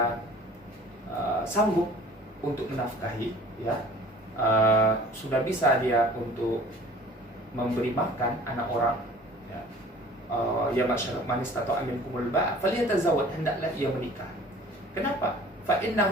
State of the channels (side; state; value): both; normal; correlation 0.47